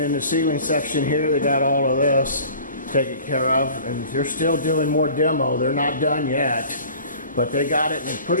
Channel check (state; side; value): inverted; both; correlation -0.45